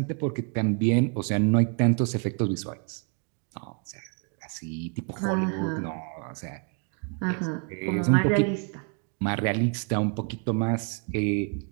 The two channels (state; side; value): quieter; left; 37.5 dB